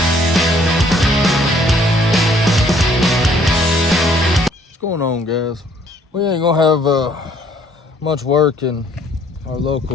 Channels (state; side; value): normal; both; correlation 0.62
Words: going on, guys? We ain't gonna have much work in our